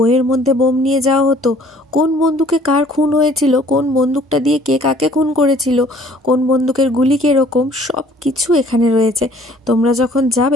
মধ্যে বোম নিয়ে যাওয়া হতো, কোন বন্দুকে কার খুন হয়েছিল, কোন বন্দুকটা দিয়ে কে কাকে খুন করেছিল, কোন বন্দুকের গুলি কীরকম, সব কিছু এখানে রয়েছে। তোমরা যখন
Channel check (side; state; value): both; normal; correlation 0.56